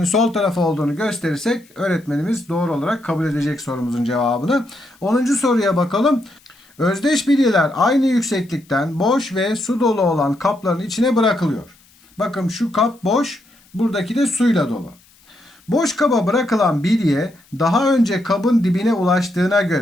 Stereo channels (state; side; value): noise; left; hiss, 30 dB below the sound